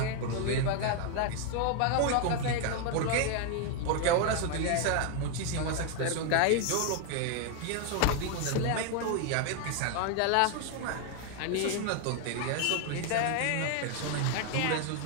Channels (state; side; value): different; both; correlation 0.01